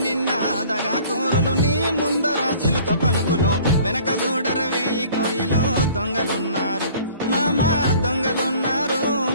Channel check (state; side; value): inverted; both; correlation -0.51